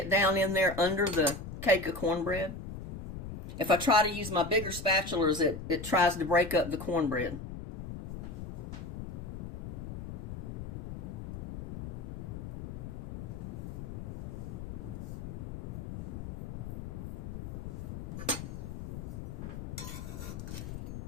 down in there under the cake of cornbread. If I try to use my bigger spatulas, it tries to break up the cornbread.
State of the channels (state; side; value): noise; left; rumble, 7 dB below the sound